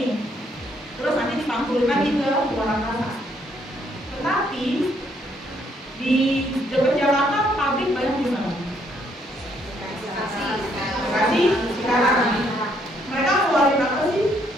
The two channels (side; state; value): both; normal; correlation 0.70